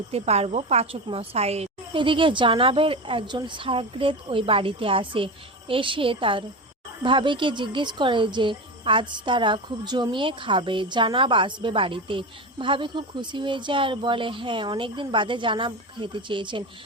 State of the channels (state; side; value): normal; both; correlation 0.22